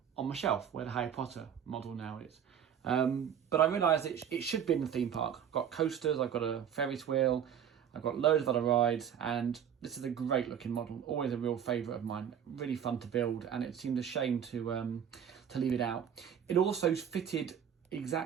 on my shelf where the Harry Potter model now is. But I realised it should be in the theme park. I've got coasters, I've got a Ferris wheel, I've got loads of other rides, and this is a great looking model, always a real favourite of mine, really fun to build, and it seemed a shame to leave it out. It also fitted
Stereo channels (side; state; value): left; quieter; 8.7 dB